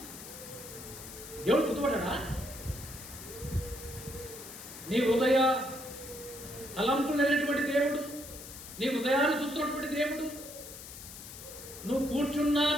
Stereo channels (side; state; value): left; noise; hiss, 13 dB below the sound